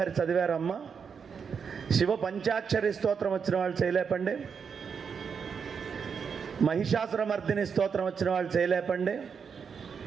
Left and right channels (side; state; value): left; quieter; 6.4 dB